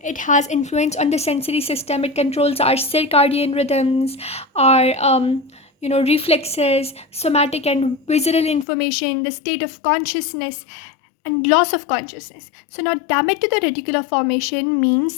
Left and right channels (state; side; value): drops out; right; at 8.7 s